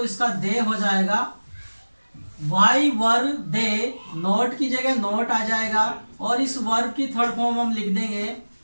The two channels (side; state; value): both; inverted; correlation -1.00